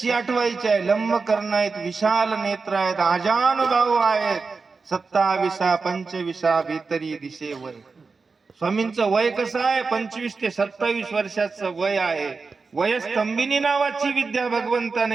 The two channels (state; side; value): quieter; left; 4.5 dB